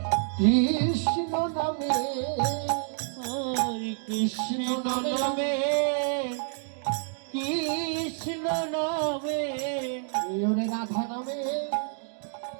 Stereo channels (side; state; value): left; silent; 59 dB below the other